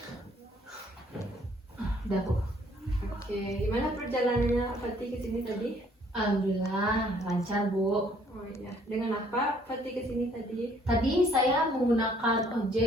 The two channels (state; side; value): normal; both; correlation 0.62